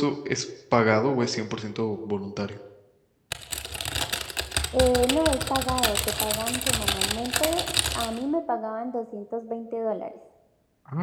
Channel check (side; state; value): both; identical; correlation 1.00